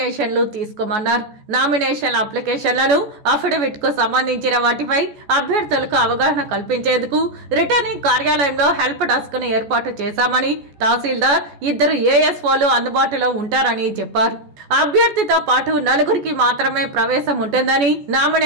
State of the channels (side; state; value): left; late; 14 ms